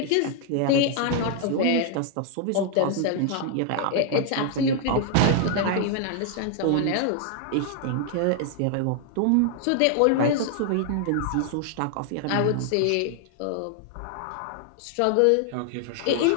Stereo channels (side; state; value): both; different; correlation 0.00